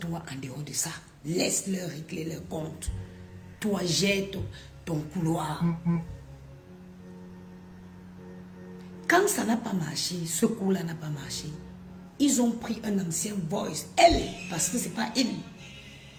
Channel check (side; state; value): both; identical; correlation 1.00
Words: en dehors de ça. Laisse-leur régler leur compte. Toi, jette ton couloir. Quand ça n'a pas marché, ce coup-là n'a pas marché, ils ont pris un ancien voice. Elle, parce que ce n'est pas elle.